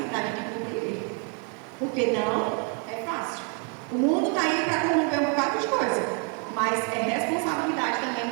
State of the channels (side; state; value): left; quieter; 38.3 dB